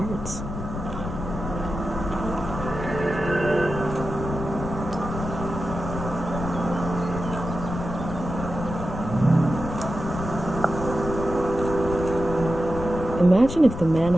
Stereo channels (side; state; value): left; noise; rumble, 7 dB below the sound